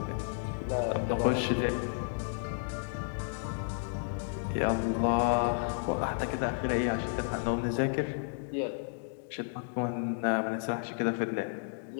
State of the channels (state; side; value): silent; right; digital silence